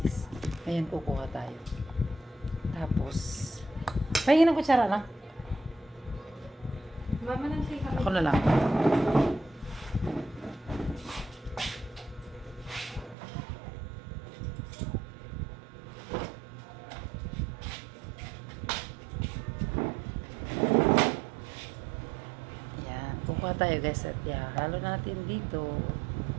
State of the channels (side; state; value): left; drops out; at 13.2 s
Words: Ngayon kukuha tayo. Tapos, pahingin ng kutsara na. Mama nang say kami. Ako na lang. Ayan, kukuha tayo guys at halo natin dito.